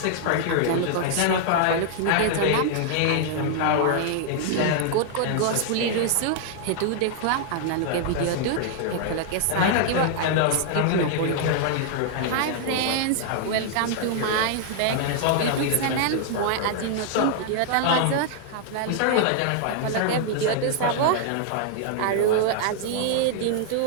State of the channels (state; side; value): different; both; correlation 0.00